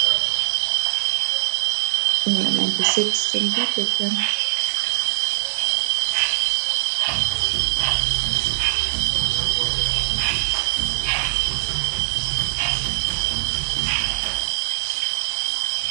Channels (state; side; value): silent; left; digital silence